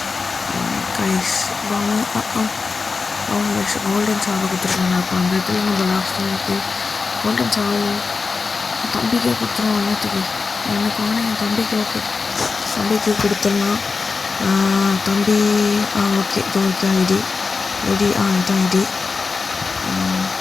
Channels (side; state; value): right; quieter; 4.5 dB